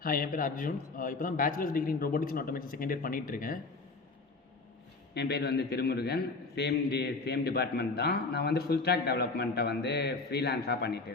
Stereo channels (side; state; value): right; quieter; 3.8 dB